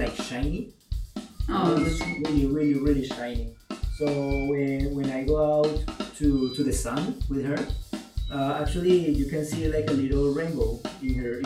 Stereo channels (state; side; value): identical; both; correlation 1.00